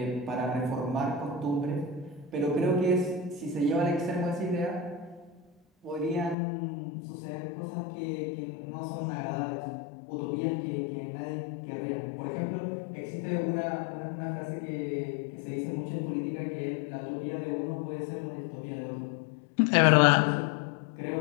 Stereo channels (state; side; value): drops out; right; at 6.4 s